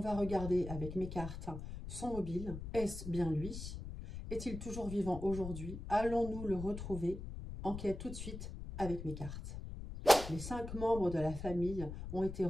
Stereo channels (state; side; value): noise; left; rumble, 8 dB below the sound